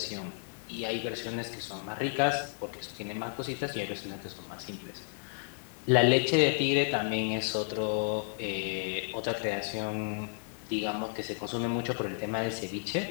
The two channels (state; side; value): silent; right; 56 dB below the other